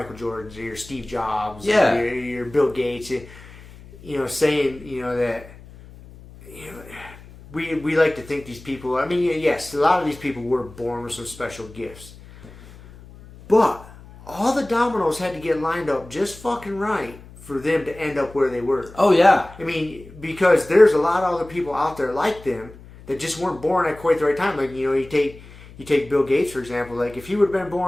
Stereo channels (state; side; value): noise; left; hum, 20 dB below the sound